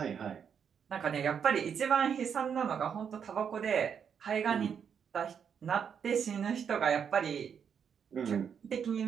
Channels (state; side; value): quieter; left; 7.4 dB